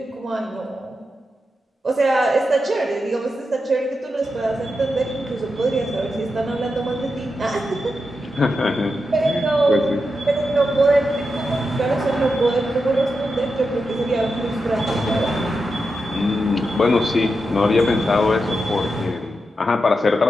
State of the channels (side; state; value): both; normal; correlation 0.88